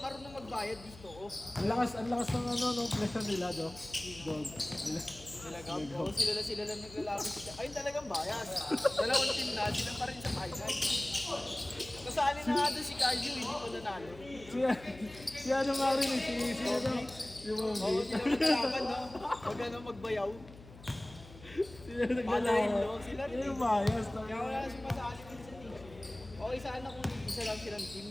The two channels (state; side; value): noise; left; hum, 19 dB below the sound